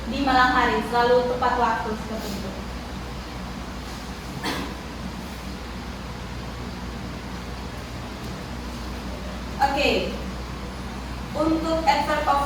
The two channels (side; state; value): both; identical; correlation 1.00